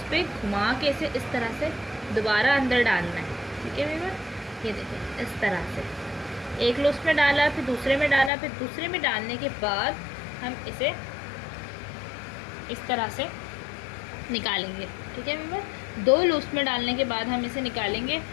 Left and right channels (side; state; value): right; drops out; at 8.3 s